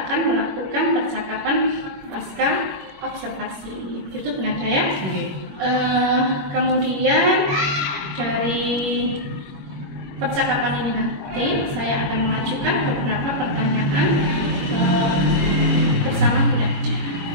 akan melakukan percakapan pasca observasi. Itu benar ya? Kemudian dari percakapan ini nanti saya akan mengajukan beberapa pertanyaan bersama Bu Nada.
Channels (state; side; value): late; left; 21 ms